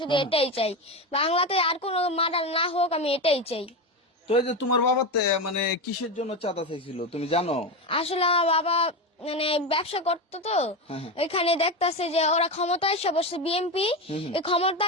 শুধু এটাই চাই। বাংলাতে আর কোনো মার্ডার না হোক, আমি এটাই চাই। তো এই যে তোমার বাবাতে মানে কিসের জন্য চাঁদা চাইছিল তুমি জানো? আসলে আমার বাবা মানে ব্যবসা করতো, তো এখানে দেখতাছে যে ওরা ক্ষমতায় এসে বসে বিএনপি, এই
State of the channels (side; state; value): both; normal; correlation 0.17